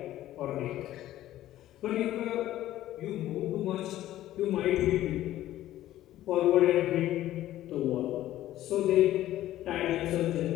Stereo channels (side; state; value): right; quieter; 13.9 dB